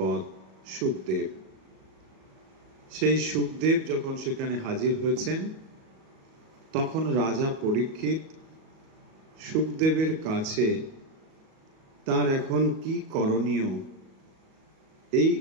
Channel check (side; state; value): left; late; 37 ms